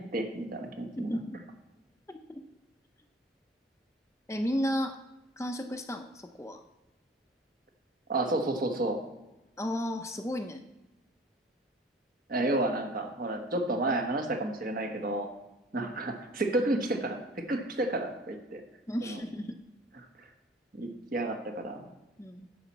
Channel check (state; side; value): normal; both; correlation 0.48